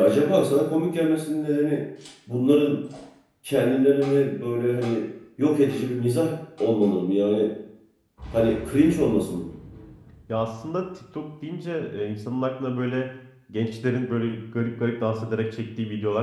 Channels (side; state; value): both; identical; correlation 1.00